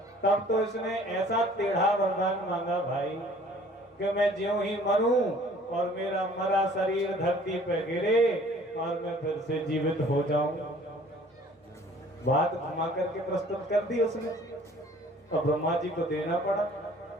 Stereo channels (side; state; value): both; normal; correlation 0.53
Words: तब तो इसने ऐसा टेढ़ा वरदान मांगा भाई कि मैं ज्यों ही मरूं और मेरा मरा शरीर धरती पर गिरे और मैं फिर से जीवित हो जाऊं। बात घुमा करके प्रस्तुत कर दी उसने और ब्रह्मा जी को देना पड़ा।